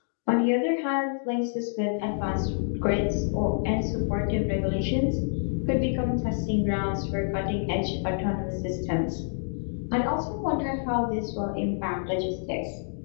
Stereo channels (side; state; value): right; silent; digital silence